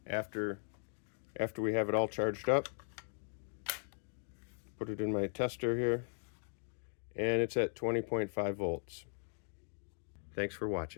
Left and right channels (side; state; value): right; silent; digital silence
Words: after we have it all charged up. Put it in my tester here, and it's at 20.5 volts. Thanks for